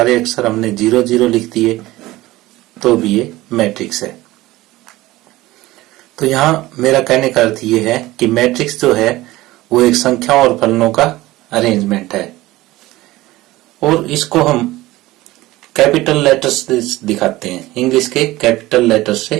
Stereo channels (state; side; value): quieter; left; 18.0 dB